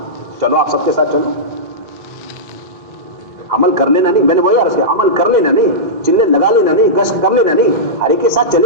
چلو آپ سب کے ساتھ چلو، عمل کر لینا نہیں، میں نے وہی عرض کیا، عمل کر لینا نہیں، چلے لگا لینا نہیں، گشت کر لینا نہیں، ہر ایک کے ساتھ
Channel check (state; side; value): late; left; 2.0 ms